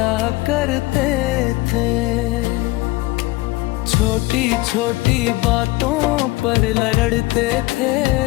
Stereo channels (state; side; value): quieter; right; 20.3 dB